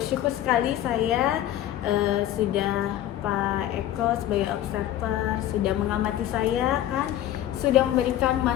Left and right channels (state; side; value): quieter; right; 12.7 dB